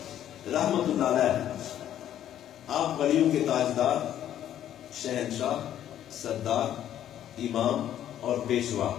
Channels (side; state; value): right; quieter; 11.1 dB